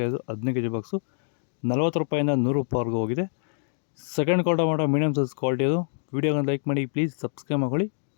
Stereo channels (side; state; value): right; silent; digital silence